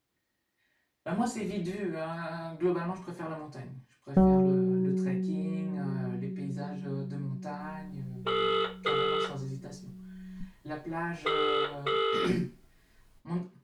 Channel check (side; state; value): both; identical; correlation 1.00